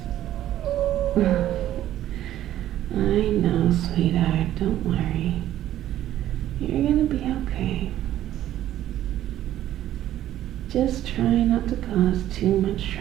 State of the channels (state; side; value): quieter; left; 12.7 dB